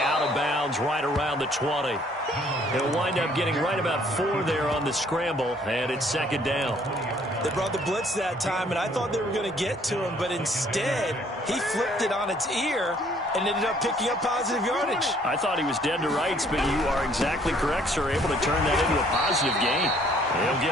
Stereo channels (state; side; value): normal; both; correlation 0.61